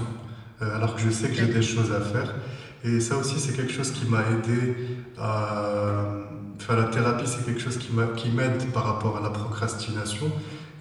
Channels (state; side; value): identical; both; correlation 1.00